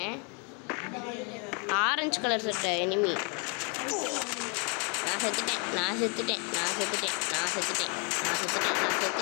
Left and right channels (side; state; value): right; quieter; 35.3 dB